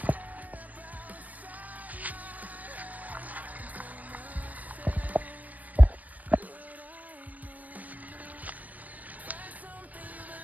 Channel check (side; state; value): left; late; 0.076 ms